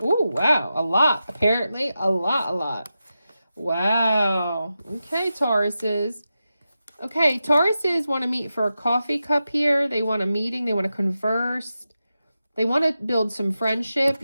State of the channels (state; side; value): inverted; both; correlation -0.91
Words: Oh, wow. A lot. Apparently, a lot. Wow. Okay, Tauruses. Okay, Tauruses want to meet for a coffee cup here. They want a meeting. They want to converse. They want to build some friendship.